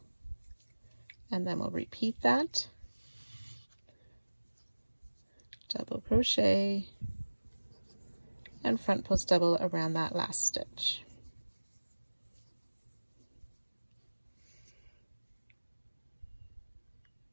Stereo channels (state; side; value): inverted; both; correlation -1.00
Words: and then we'll repeat that. Double crochet, and front post double around that last stitch.